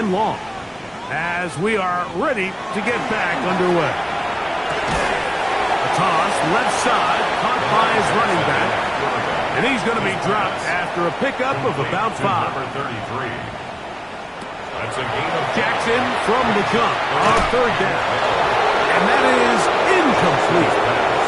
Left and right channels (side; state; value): both; identical; correlation 1.00